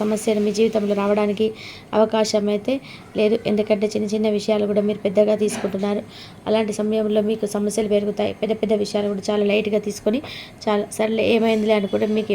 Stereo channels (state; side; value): identical; both; correlation 1.00